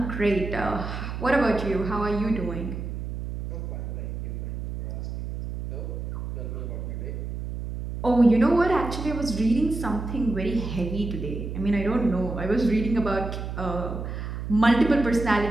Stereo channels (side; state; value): right; noise; hum, 6 dB below the sound